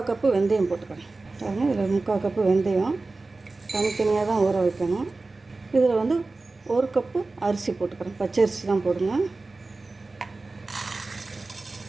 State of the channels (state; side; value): quieter; left; 3.5 dB